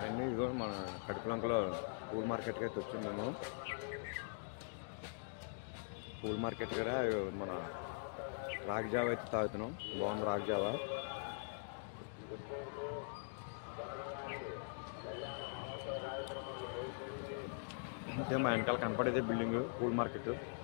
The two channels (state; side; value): silent; right; digital silence